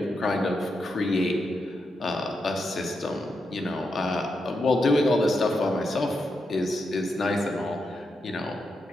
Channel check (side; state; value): both; normal; correlation 0.85